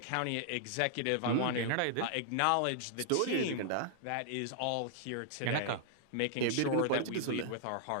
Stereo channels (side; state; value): both; different; correlation -0.01